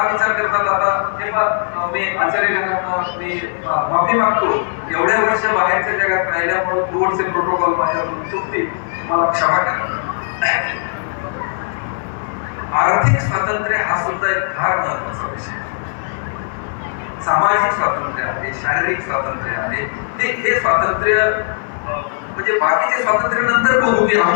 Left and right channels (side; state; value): right; silent; 56 dB below the other